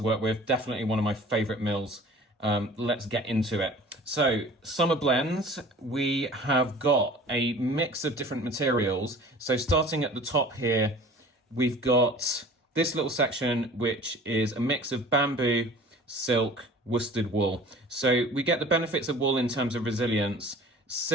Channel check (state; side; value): normal; both; correlation 0.45